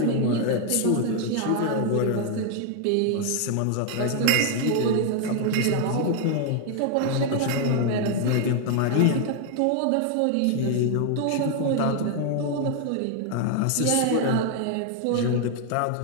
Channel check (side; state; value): both; different; correlation 0.00